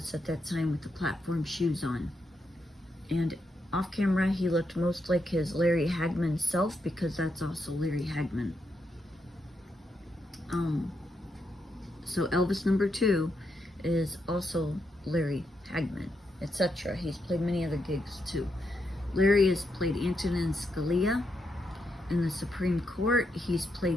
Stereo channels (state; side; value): normal; both; correlation 0.82